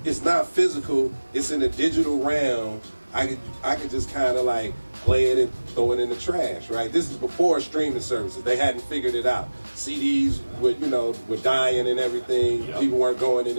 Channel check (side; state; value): both; inverted; correlation -1.00